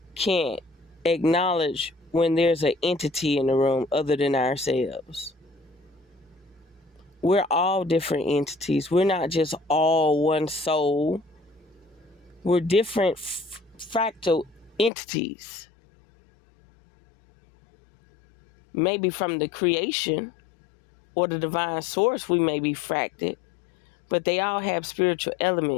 can't acknowledge when there's an entity in the room other than ourselves. We're all different entities. We're not just all one soul. We're different fractal entities. Maybe from the creation or the divine source we may be fracted, but they all have spiritual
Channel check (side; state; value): right; drops out; at 14.9 s